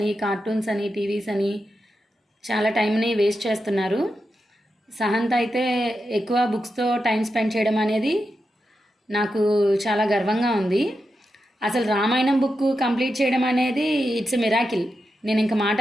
కార్టూన్స్ అని, టీవీస్ అని చాలా టైంని వేస్ట్ చేస్తున్నారు. సహంత్ అయితే ఎక్కువ బుక్స్తో టైం స్పెండ్ చేయడం అనేది నాకు చాలా గర్వంగా ఉంది. అసలు రామాయణం బుక్ కంప్లీట్ చేయడం అనేది ఇట్స్ ఎ మిరాకిల్. నేను ఇంకా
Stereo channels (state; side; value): normal; both; correlation 0.88